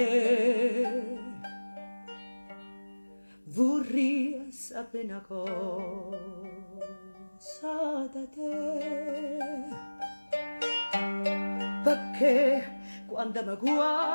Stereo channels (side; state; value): both; inverted; correlation -1.00